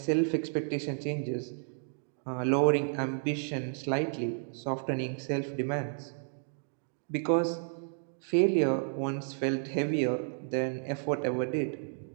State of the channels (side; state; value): left; silent; 57 dB below the other